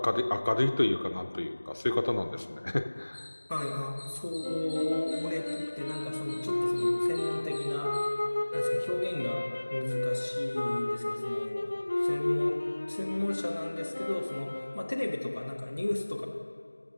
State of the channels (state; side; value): inverted; both; correlation -1.00